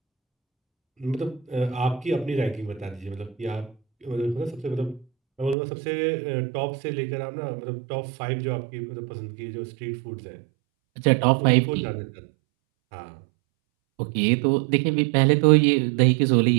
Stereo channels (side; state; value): left; drops out; at 5.6 s